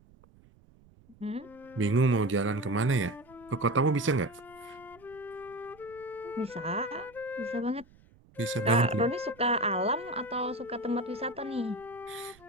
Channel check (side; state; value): right; noise; rumble, 27 dB below the sound